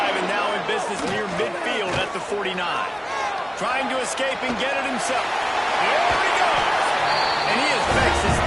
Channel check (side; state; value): both; identical; correlation 1.00